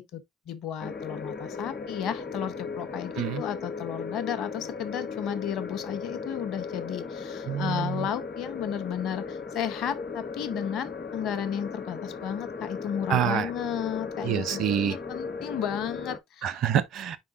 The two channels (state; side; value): normal; both; correlation 0.44